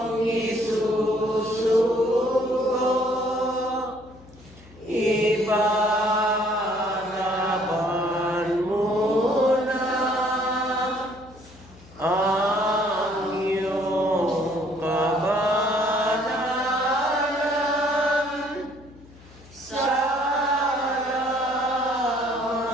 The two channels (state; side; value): noise; left; hum, 23 dB below the sound